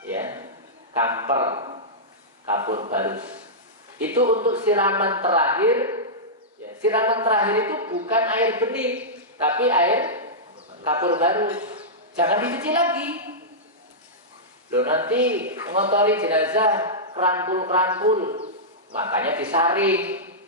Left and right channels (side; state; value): both; normal; correlation -0.12